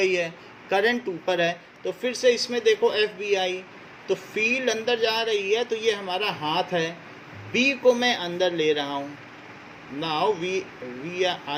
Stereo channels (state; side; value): identical; both; correlation 1.00